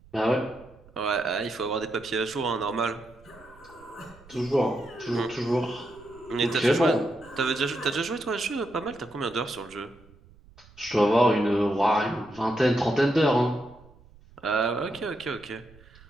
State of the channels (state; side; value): noise; right; rumble, 25 dB below the sound